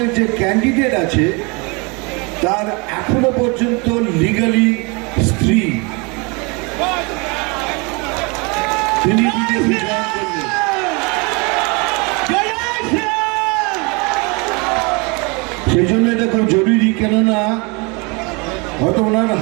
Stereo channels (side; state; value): left; quieter; 29.6 dB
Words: যে ক্যান্ডিডেট আছে তার এখনো পর্যন্ত লিগালি স্ত্রী, তিনি বিজেপি জয়েন করলেন। সেই জন্য এটা খুব জরুরি, কেননা হয়তো ওনার